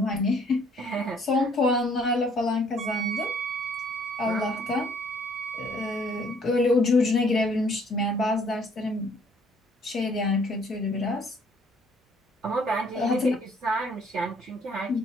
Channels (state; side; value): normal; both; correlation 0.62